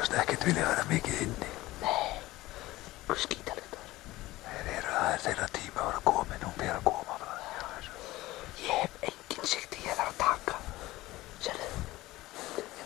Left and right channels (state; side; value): quieter; right; 18.0 dB